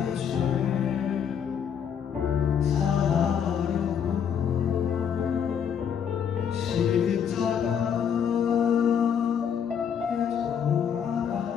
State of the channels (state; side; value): quieter; right; 7.9 dB